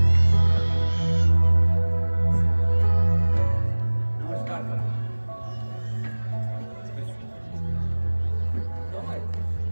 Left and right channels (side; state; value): both; inverted; correlation -1.00